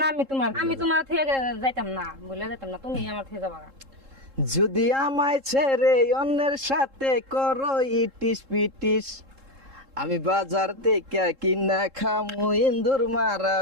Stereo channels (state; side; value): late; left; 3.7 ms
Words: না আমি তোমার থেকে যাইতাম না, ভুলে যাইতাম না, তুমি আমার থেকে যাবা গা। যদি আমায় ছেড়ে অন্যের সাথে করো ইটিস পিটিস, আমি বাজার থেকে কিনা খামু ইন্দুর মারা